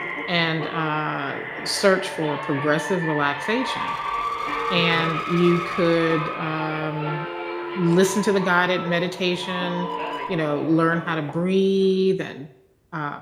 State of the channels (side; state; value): both; identical; correlation 1.00